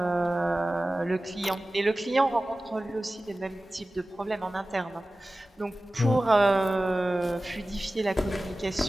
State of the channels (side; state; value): both; normal; correlation 0.96